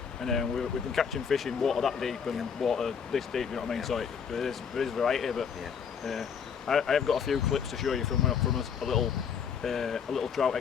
and we've been catching fish in water that deep and water this deep. You know what I mean? Yeah. So there is variety, but yeah. I have got a few clips to show you from a little trout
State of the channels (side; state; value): right; quieter; 6.9 dB